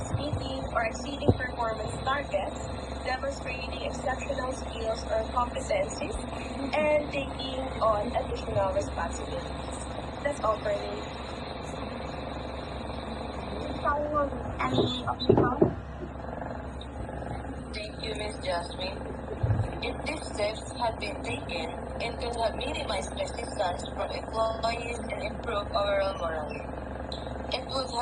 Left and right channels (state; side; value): identical; both; correlation 1.00